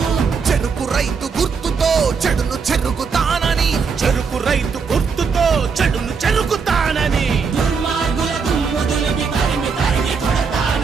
చెరుకు రైతు గుర్తుతో చెడును చెరుగుతానని చెరుకు రైతు గుర్తుతో చెడును చెరుకుతానని దుర్మార్గుల దుమ్ము దులిపి తరిమి తరిమి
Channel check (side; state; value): left; quieter; 5.5 dB